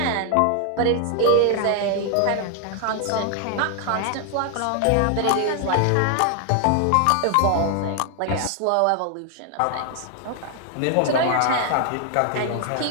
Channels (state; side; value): different; both; correlation 0.00